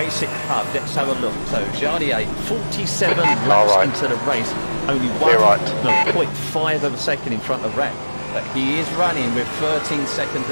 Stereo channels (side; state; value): both; inverted; correlation -1.00